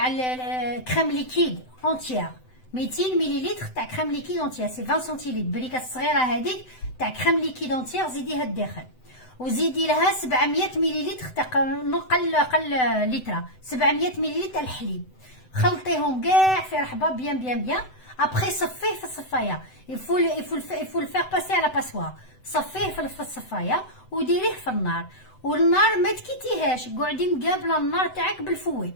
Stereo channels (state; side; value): late; right; 7.9 ms